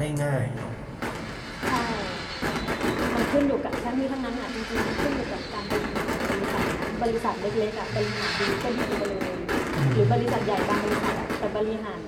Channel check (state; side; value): identical; both; correlation 1.00